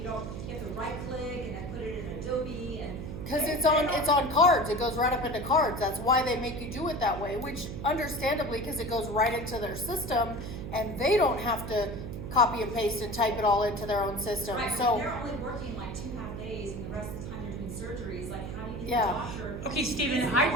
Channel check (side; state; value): right; noise; hum, 7 dB below the sound